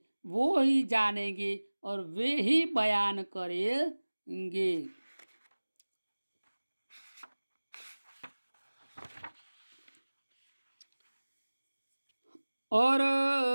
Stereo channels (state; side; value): inverted; both; correlation -1.00